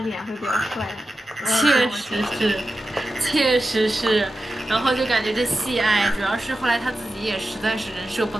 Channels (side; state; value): both; normal; correlation 0.92